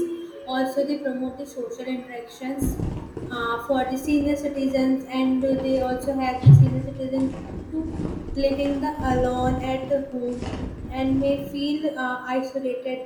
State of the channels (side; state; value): both; identical; correlation 1.00